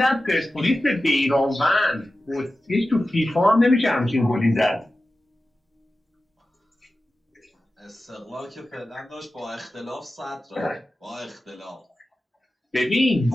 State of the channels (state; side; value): normal; both; correlation 0.94